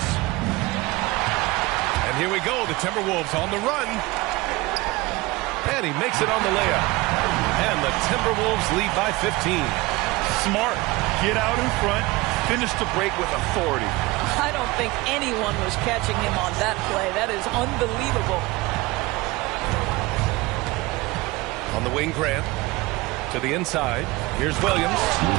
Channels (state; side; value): quieter; left; 21.5 dB